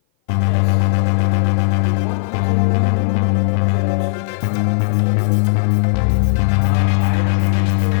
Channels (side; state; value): right; silent; 57 dB below the other